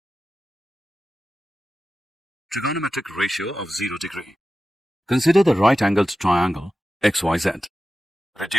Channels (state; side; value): normal; both; correlation 0.93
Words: Trigonometric ratio of 0 degree. Consider the right-angled triangle XYZ.